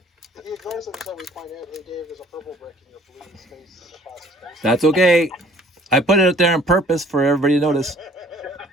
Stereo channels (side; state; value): both; normal; correlation 0.56